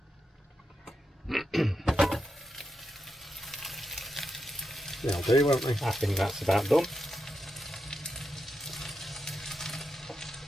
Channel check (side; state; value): both; normal; correlation 0.86